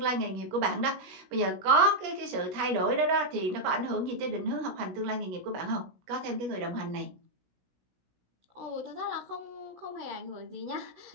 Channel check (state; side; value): late; left; 17 ms